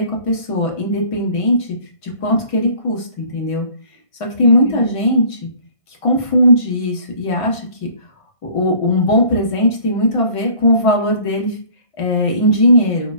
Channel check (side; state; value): right; late; 1.5 ms